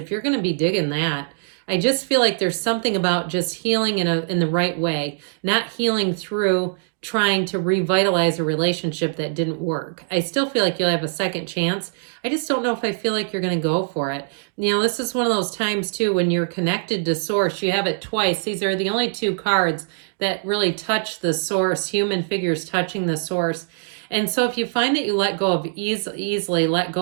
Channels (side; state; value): left; silent; digital silence